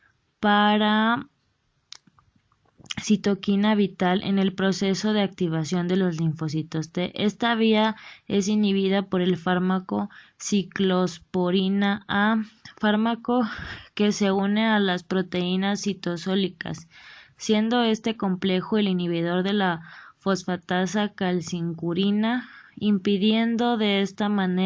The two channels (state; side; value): identical; both; correlation 1.00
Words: para citoquina vital en el proceso de activación de los linfocitos T. Esta vía es inhibida por el fármaco ciclosporina A, fármaco que se une a las proteínas citosólicas, siendo este complejo el inhibidor de la fosfatasa calcincurina, impidiendo de esta